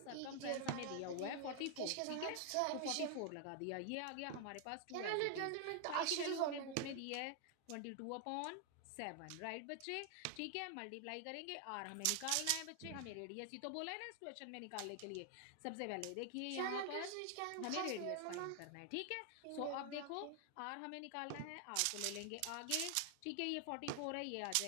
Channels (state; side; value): different; both; correlation 0.00